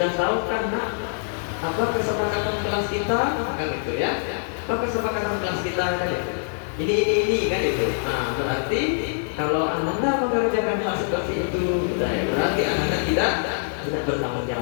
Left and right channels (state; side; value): silent; right; digital silence